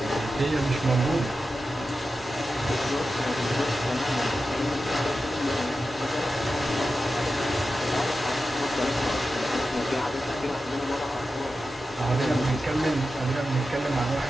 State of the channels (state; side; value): normal; both; correlation 0.91